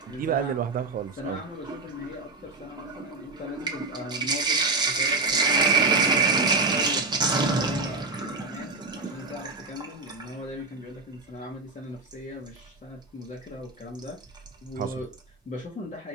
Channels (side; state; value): left; quieter; 3.6 dB